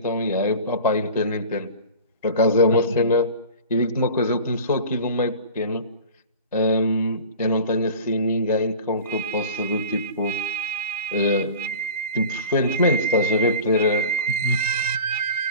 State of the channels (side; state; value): both; inverted; correlation -0.39